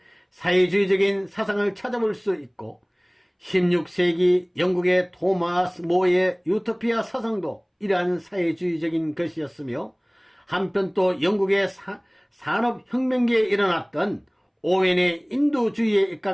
사회주의적인 사상을 찾아볼 수 있고 16세기 영국의 토마스 모의 유토피아 사상도 이러한 사회주의적인 것이었으며 한편 또 영국의 산업혁명기에 일어났던 오웬의 인도주의에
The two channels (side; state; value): both; identical; correlation 1.00